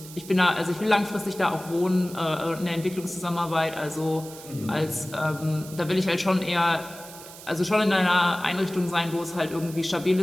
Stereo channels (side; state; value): right; noise; hiss, 16 dB below the sound